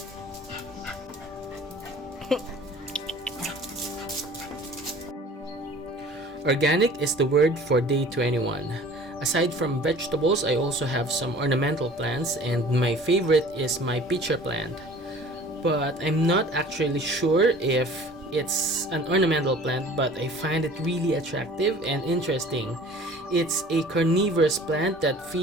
Organic is the word for day 21. Aside from vegetables, I also have some ornamental plants, and my favorite is my pitcher plant. But I'm not actually sure if it's an ornamental plant, but I find it really attractive and interesting. It's a carnivorous plant that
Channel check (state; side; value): normal; both; correlation 0.47